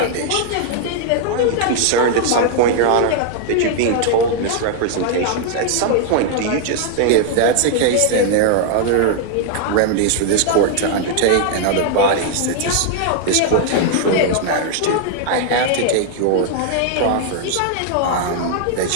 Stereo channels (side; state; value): both; different; correlation 0.00